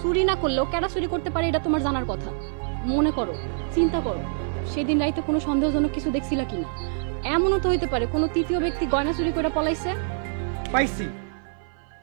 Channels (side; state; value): left; silent; 56 dB below the other